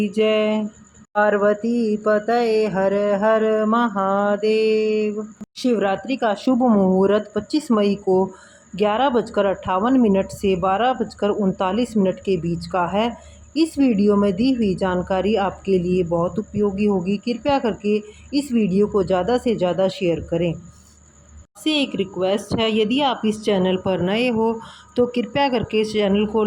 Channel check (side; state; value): both; identical; correlation 1.00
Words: जय। पार्वती पतये हर हर महादेव। शिवरात्रि का शुभ मुहूर्त 25 मई को 11:58 से 12:39 के बीच का है। इस वीडियो में दी हुई जानकारी आपके लिए बहुत उपयोगी होगी। कृपया करके इस वीडियो को ज़्यादा से ज़्यादा शेयर करें। आपसे एक रिक्वेस्ट है, यदि आप इस चैनल पर नए हो तो कृपया करके इस चैनल को